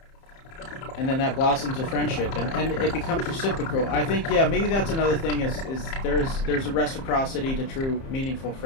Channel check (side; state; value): right; late; 30 ms